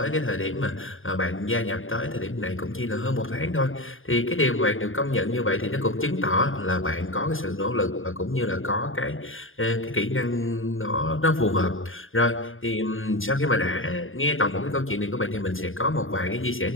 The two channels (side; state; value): right; late; 0.59 ms